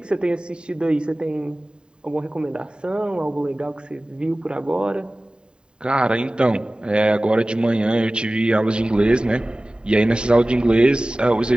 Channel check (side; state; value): left; late; 0.049 ms